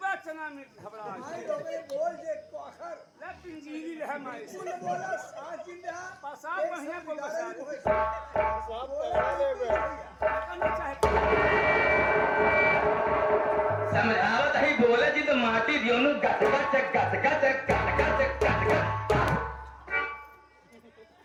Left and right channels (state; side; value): identical; both; correlation 1.00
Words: चना में घबरा भाई लोगे बोल जे कोखर ले पिंजीरी रह माई बोल बोला साथ दिन रहा पसाब बढ़िया को बसा सब पहला ले करना चाहे समझावत ही बोले जी तो माटी दियो नु गट गट गट गट गट गट गट